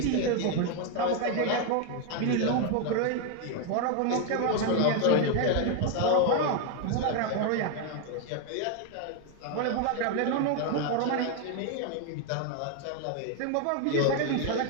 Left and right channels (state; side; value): different; both; correlation 0.01